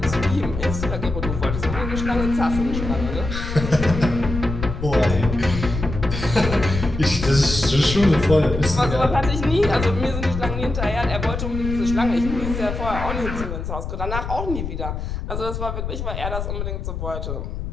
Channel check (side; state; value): left; noise; rumble, 5 dB below the sound